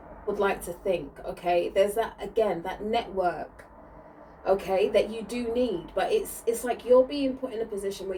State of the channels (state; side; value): identical; both; correlation 1.00